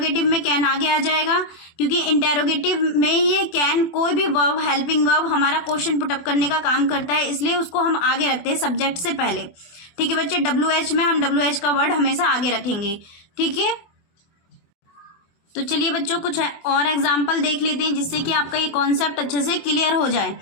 में कैन आगे आ जाएगा क्योंकि इंटेरोगेटिव में ये कैन कोई भी वर्ब, हेल्पिंग वर्ब हमारा क्वेश्चन पुटअप करने का काम करता है, इसलिए उसको हम आगे रखते हैं सब्जेक्ट से पहले। ठीक है बच्चे, WH में हम WH का वर्ड हमेशा आगे रखेंगे। ठीक है, तो चलिए बच्चों कुछ और एग्जाम्पल देख लेते हैं जिससे कि आपका ये कॉन्सेप्ट अच्छे से क्लियर हो जाए।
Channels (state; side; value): late; right; 24 ms